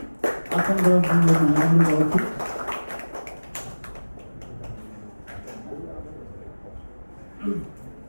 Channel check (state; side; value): inverted; both; correlation -1.00